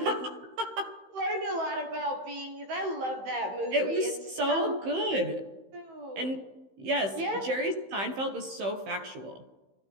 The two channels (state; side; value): late; left; 15 ms